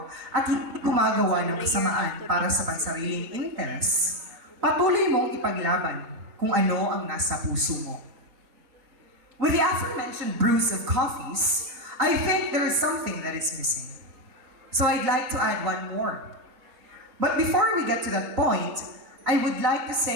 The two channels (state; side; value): late; left; 3.9 ms